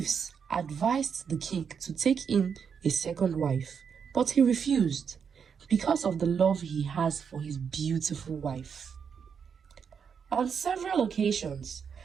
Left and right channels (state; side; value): quieter; left; 6.8 dB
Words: advised the king to take in a second wife, but he refused because of the love he has for his beautiful wife. On several occasions,